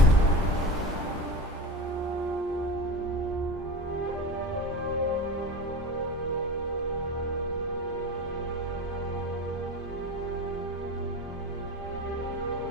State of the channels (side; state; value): both; normal; correlation 0.29